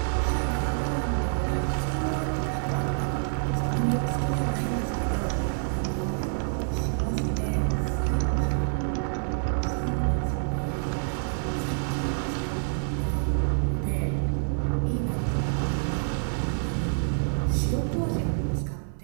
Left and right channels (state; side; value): silent; left; 60 dB below the other